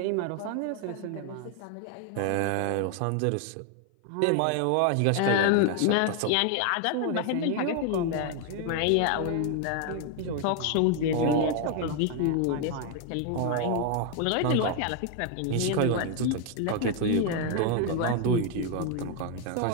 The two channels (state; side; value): different; both; correlation 0.00